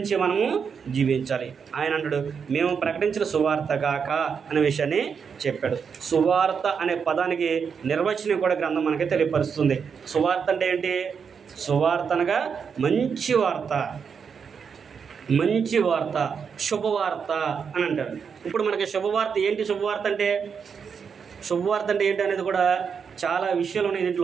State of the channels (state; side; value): quieter; left; 6.4 dB